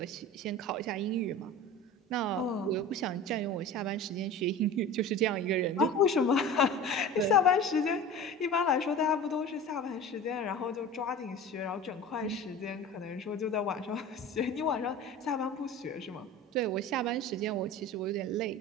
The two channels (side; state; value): both; normal; correlation 0.35